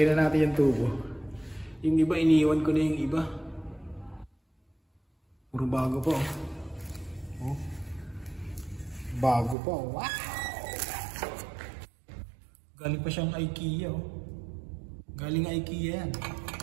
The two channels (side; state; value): left; drops out; at 9.6 s